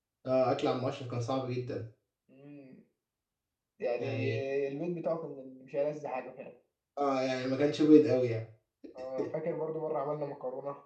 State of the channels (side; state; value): both; identical; correlation 1.00